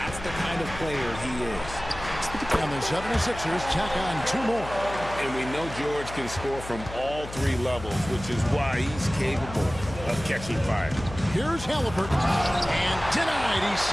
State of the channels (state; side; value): noise; left; hum, 12 dB below the sound